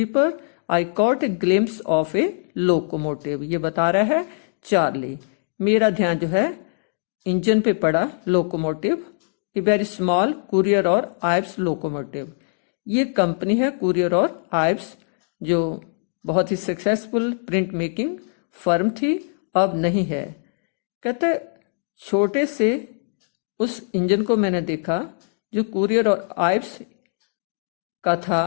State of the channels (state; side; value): silent; right; digital silence